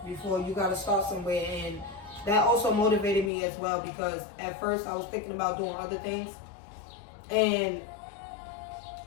before. You got to start somewhere, and that also motivated me as well, because at first I was thinking about doing other things, and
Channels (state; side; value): drops out; right; at 3.3 s